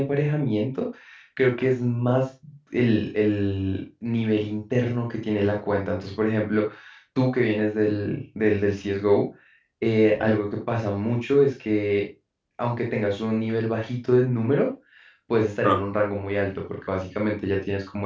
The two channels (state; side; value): identical; both; correlation 1.00